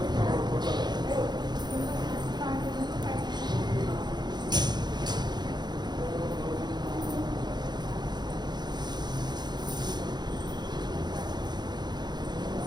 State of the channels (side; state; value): left; late; 0.21 ms